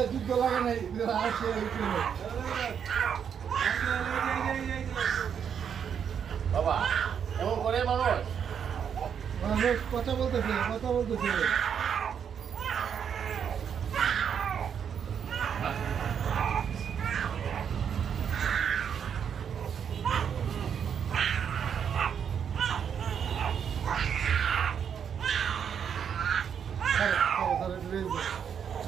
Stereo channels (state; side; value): quieter; left; 7.8 dB